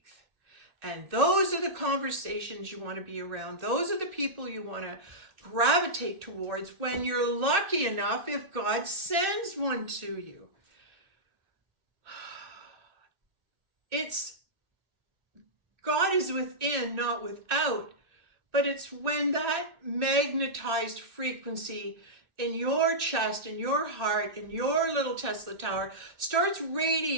And those are the conversations you want to be around. Those are the people you want to gravitate towards when you're lucky enough, if God sends one to you. God is within, not without, but it's when that magnetized frequency in your chest, in your heart, in your little Tesla tower starts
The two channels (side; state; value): left; late; 2.8 ms